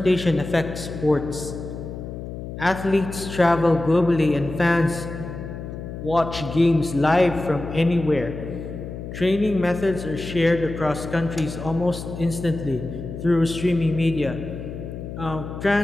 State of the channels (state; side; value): noise; left; hum, 9 dB below the sound